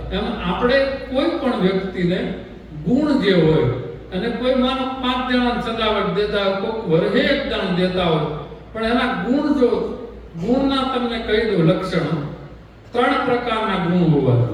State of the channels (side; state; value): both; identical; correlation 1.00